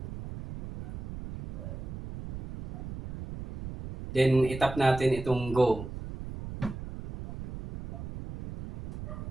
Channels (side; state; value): right; noise; rumble, 9 dB below the sound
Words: Then itap natin itong go.